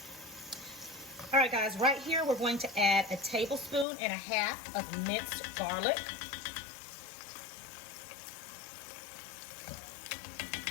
All right, guys, right here, we're going to add a tablespoon and a half of minced garlic.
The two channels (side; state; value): right; drops out; at 3.9 s